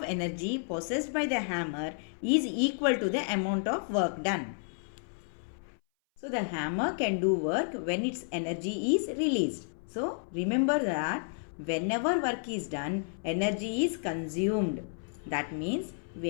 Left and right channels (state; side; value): silent; right; 57 dB below the other